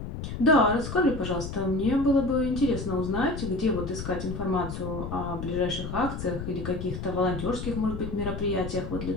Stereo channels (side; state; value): left; noise; rumble, 7 dB below the sound